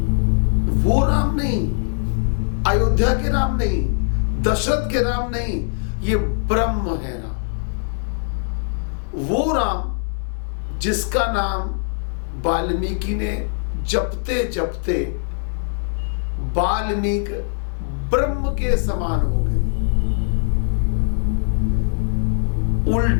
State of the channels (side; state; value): right; silent; digital silence